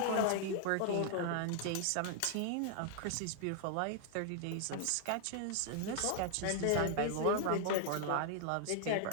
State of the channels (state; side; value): different; both; correlation 0.00